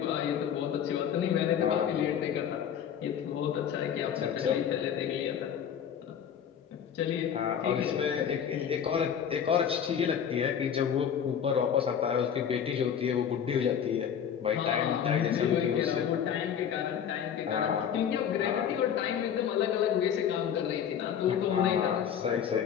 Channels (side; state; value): right; quieter; 8.5 dB